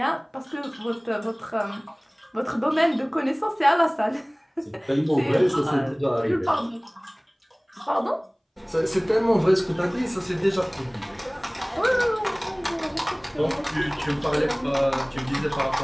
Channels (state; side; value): identical; both; correlation 1.00